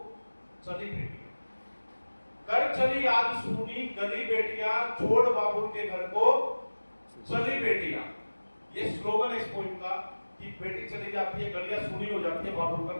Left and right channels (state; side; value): inverted; both; correlation -1.00